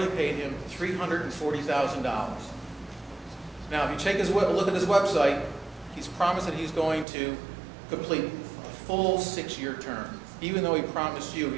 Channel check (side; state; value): left; drops out; at 7.1 s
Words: paid him $340,000. Now, if you take a look at his website, he's promised that he's going to complete a full 6-year term, even though he promised you